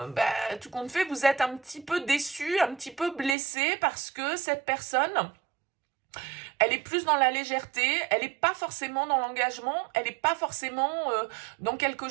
tout compte fait, vous êtes un petit peu déçu, un petit peu blessé parce que cette personne... elle est plus dans la légèreté, elle n'est pas forcément dans l'engagement, elle n'est pas forcément dans quelque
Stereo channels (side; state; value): left; drops out; at 3.4 s